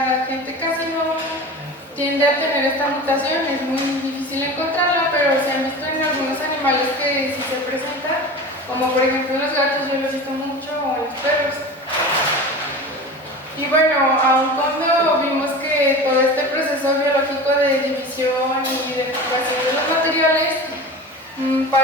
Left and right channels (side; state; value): both; normal; correlation 0.33